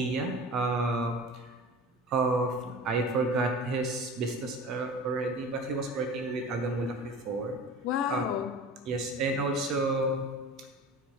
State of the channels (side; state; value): both; normal; correlation 0.37